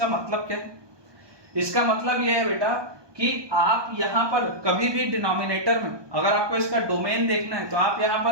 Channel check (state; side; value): late; left; 1.2 ms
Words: मतलब क्या है? इसका मतलब यह है बेटा कि आप यहां पर कभी भी डिनोमिनेटर में, अगर आपको इसका डोमेन देखना है तो आप यहां